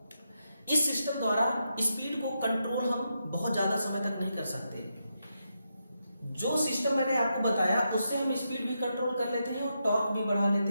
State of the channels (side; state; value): both; inverted; correlation -0.84